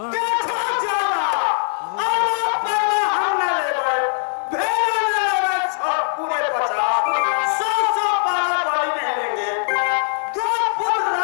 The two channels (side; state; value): right; silent; digital silence